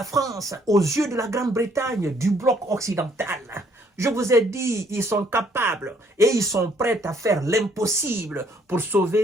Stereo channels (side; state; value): both; normal; correlation 0.65